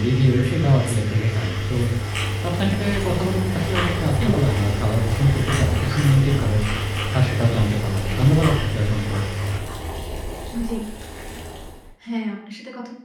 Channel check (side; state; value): both; identical; correlation 1.00